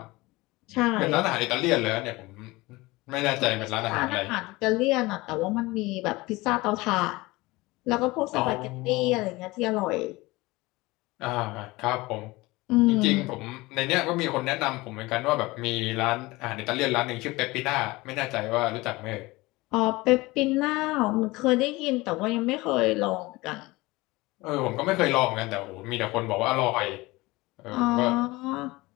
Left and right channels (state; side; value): quieter; right; 21.4 dB